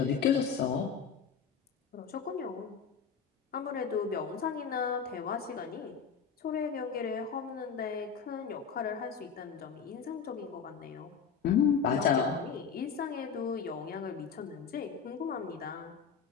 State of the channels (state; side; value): quieter; right; 6.6 dB